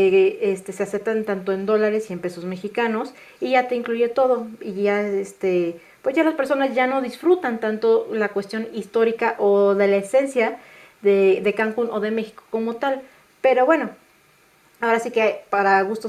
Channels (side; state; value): both; identical; correlation 1.00